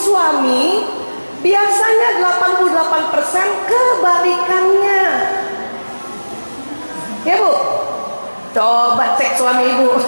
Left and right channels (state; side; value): inverted; both; correlation -1.00